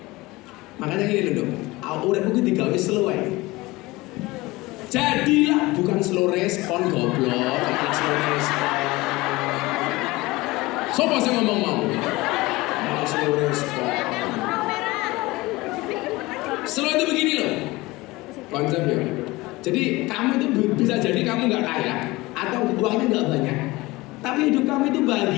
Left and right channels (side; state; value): right; quieter; 21.0 dB